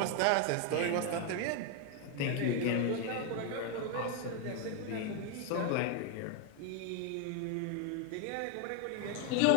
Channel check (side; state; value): both; different; correlation 0.01